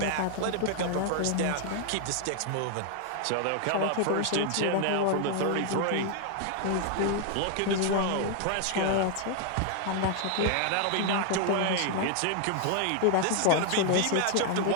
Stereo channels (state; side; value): different; both; correlation 0.00